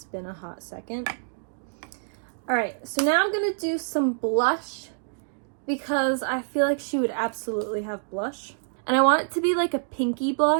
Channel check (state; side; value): silent; left; digital silence